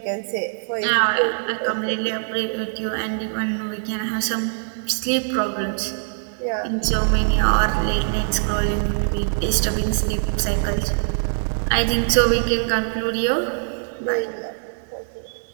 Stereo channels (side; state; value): left; silent; 63 dB below the other